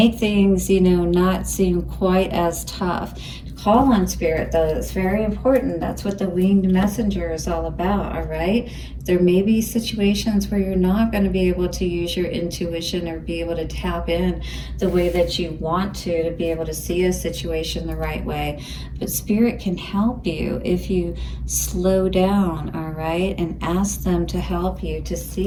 things, not seem quite as tough. Call on Spirit, though. It's very important. That's what the winged messenger is all about, all right? There may be situations where you're not going to be able to use your intuition or be able to tap in the way that you want to be able to see a situation the right way. But Spirit can help you if you slow down, all right, and ask them to help you to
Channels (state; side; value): identical; both; correlation 1.00